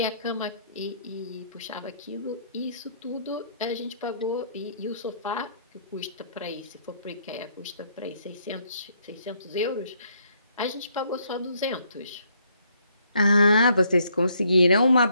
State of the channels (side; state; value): both; inverted; correlation -0.69